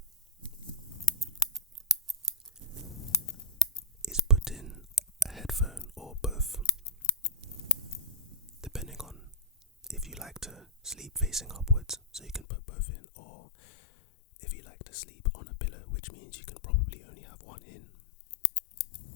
is put in a headphone or both, depending on if you like to sleep facing upwards, so you can put both in, or if you like to sleep on a pillow, which means you can probably only have one in.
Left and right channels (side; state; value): right; drops out; at 12.5 s